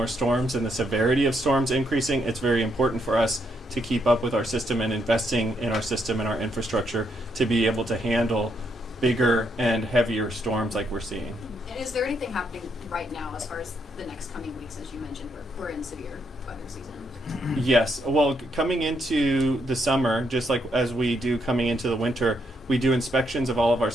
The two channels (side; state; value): both; normal; correlation 0.76